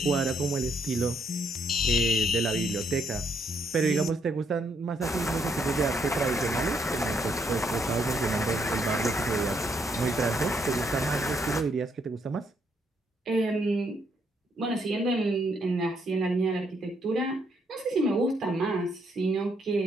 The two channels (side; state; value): both; normal; correlation 0.73